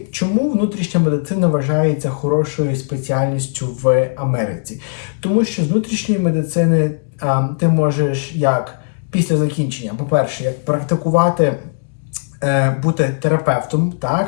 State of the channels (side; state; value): right; silent; digital silence